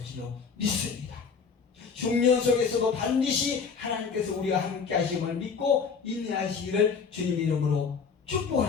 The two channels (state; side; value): quieter; right; 5.7 dB